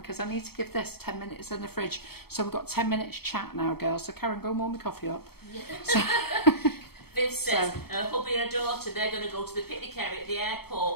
I need to give this 10 minutes in the fridge. So we've got 10 minutes chat now, girls. So Karen, go and warm my coffee up. Yeah. So Viv says her hubby and her daughter, they're going to go to the picnic area at the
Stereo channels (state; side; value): late; right; 0.96 ms